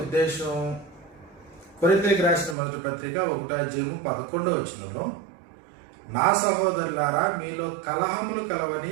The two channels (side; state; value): left; drops out; at 2.6 s